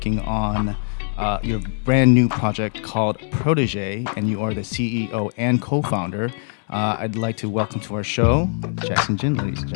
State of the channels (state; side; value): silent; right; 57 dB below the other